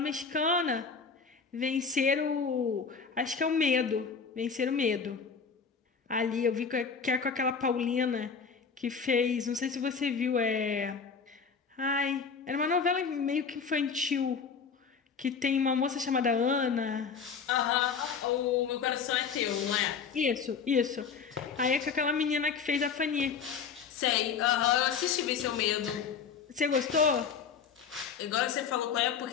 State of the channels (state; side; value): quieter; right; 5.9 dB